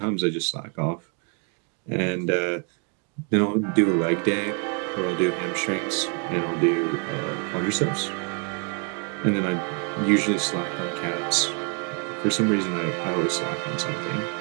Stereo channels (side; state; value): left; quieter; 38.2 dB